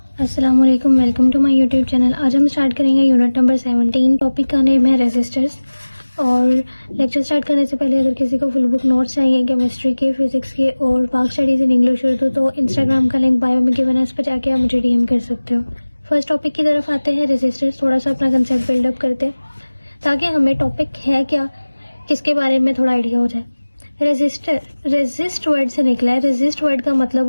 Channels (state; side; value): inverted; both; correlation -1.00